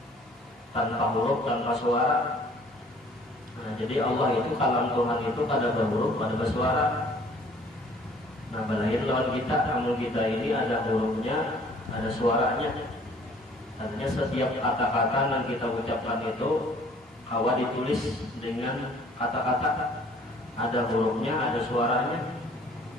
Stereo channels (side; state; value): both; normal; correlation 0.55